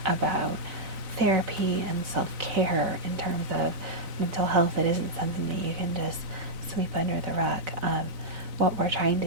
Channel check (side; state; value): left; late; 4.0 ms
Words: about therapy and self-care in terms of mental health. It isn't something that you can just sweep under the rug. What we're trying